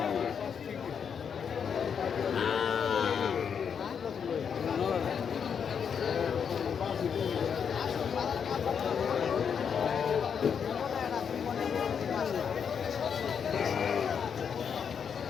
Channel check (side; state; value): right; quieter; 7.1 dB